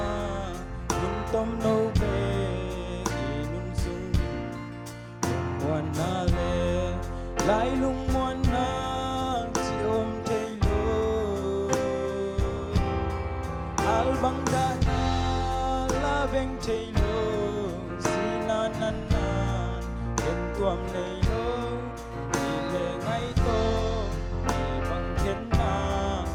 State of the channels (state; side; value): identical; both; correlation 1.00